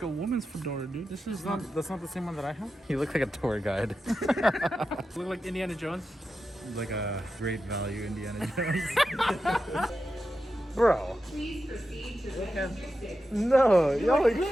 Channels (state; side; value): normal; both; correlation 0.90